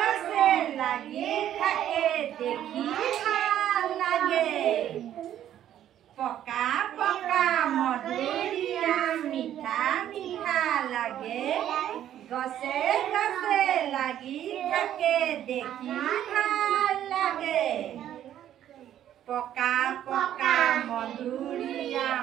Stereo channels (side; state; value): left; quieter; 11.2 dB